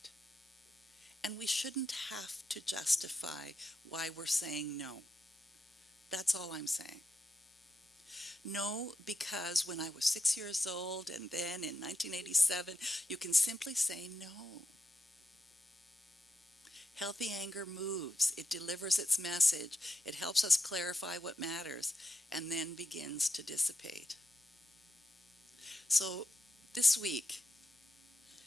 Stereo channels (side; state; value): both; normal; correlation 0.86